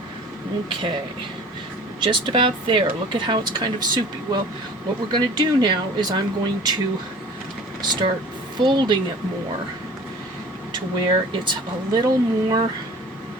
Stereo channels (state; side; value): normal; both; correlation 0.44